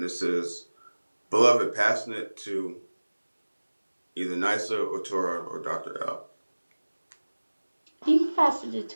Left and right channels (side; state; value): both; inverted; correlation -1.00